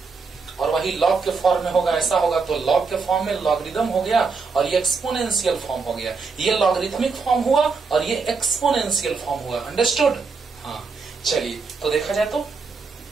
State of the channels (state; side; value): quieter; left; 4.7 dB